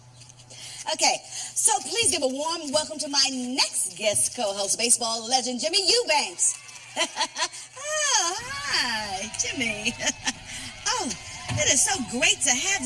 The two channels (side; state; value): both; identical; correlation 1.00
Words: Okay, so please give a warm welcome to my next guest co-host, baseball legend Jimmy Eubanks. Oh, hi, Jimmy. Oh, it is so great to have